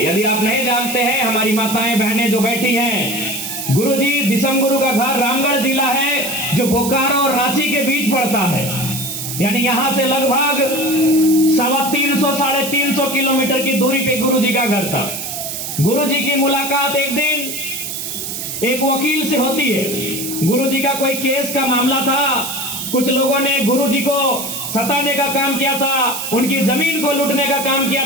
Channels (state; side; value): noise; right; hiss, 6 dB below the sound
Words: यदि आप नहीं जानते हैं, हमारी माताएं बहनें जो बैठी हैं, गुरु जी दिसम गुरु का घर रामगढ़ जिला है जो बोकारो और रांची के बीच पड़ता है। यानी यहां से लगभग 350-350 किलोमीटर की दूरी पे गुरु जी का घर था। गुरु जी की मुलाकात एक दिन एक वकील से होती है। गुरु जी का कोई केस का मामला था, कुछ लोगों ने गुरु जी को सताने का काम किया था, उनकी जमीन को लूटने का काम किया